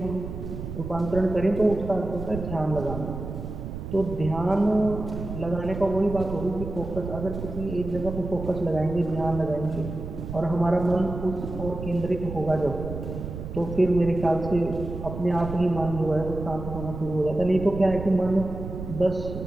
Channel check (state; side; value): noise; right; rumble, 8 dB below the sound